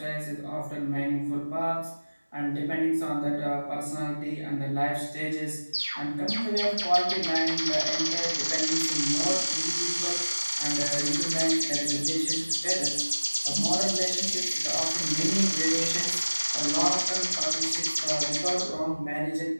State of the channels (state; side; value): inverted; both; correlation -1.00